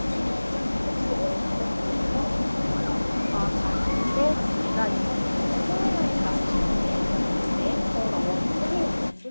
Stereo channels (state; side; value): inverted; both; correlation -1.00